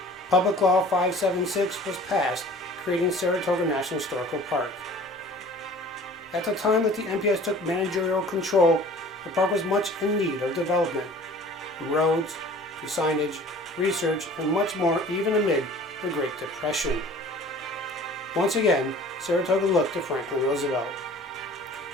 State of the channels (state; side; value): normal; both; correlation 0.47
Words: Public Law 576 was passed, creating Saratoga National Historical Park. At the time that the NPS took managerial control, the park was much in need of development, from roads to signage, research, and much more, even amid the Great Depression. Once again, Saratoga looked to Franklin Roosevelt.